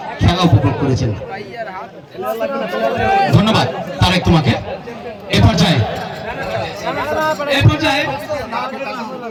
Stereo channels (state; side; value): identical; both; correlation 1.00